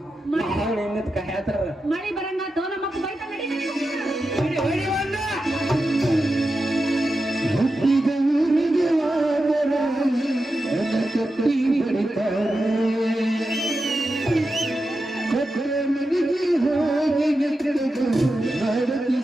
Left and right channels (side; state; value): both; normal; correlation 0.90